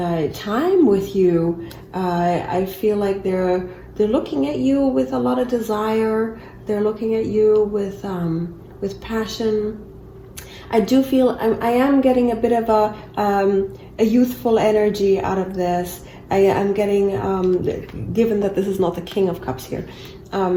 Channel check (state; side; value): identical; both; correlation 1.00